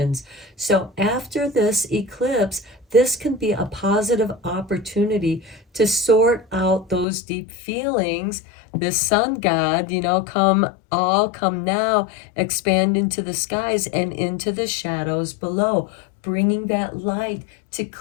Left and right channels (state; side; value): drops out; right; at 7.1 s